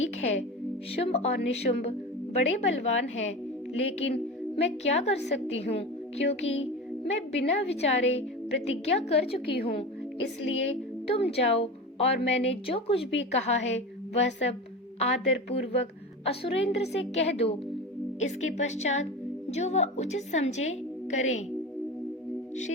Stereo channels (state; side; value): normal; both; correlation 0.28